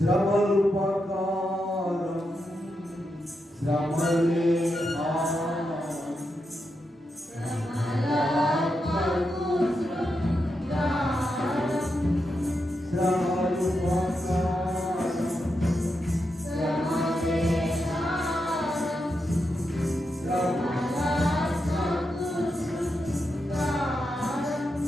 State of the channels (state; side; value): normal; both; correlation 0.86